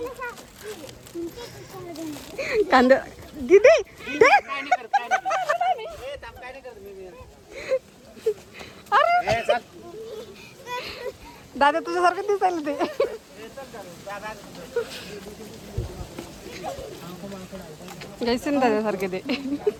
कांदा दीदी अरे दादा तुझ्यासारखं दिसायला ते. जैसे दादासारखे ते.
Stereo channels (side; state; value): both; identical; correlation 1.00